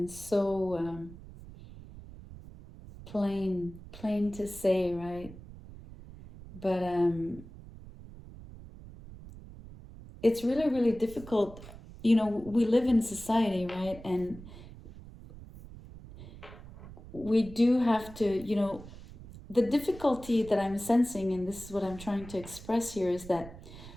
so plain to say, right? But it's really, really difficult. We live in society, right? And we do have to, the difficulty that I'm sensing, and this is what I'm trying to express here, is that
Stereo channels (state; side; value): noise; right; rumble, 16 dB below the sound